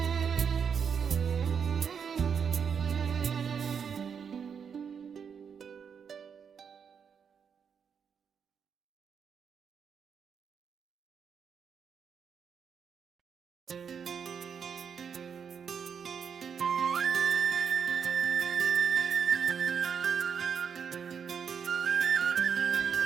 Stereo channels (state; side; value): quieter; left; 6.9 dB